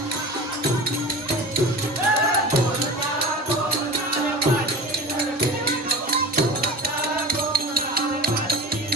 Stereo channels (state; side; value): normal; both; correlation 0.36